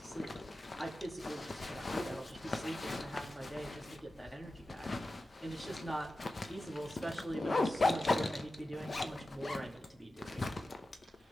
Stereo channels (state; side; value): normal; both; correlation 0.93